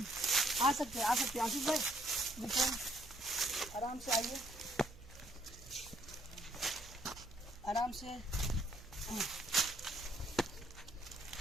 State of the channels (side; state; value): right; noise; hum, 19 dB below the sound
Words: आ सकते हैं। आशीष भाई देखो, आराम से आइए, आराम से।